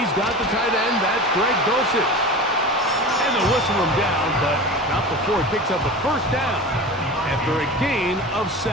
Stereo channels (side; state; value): both; normal; correlation 0.32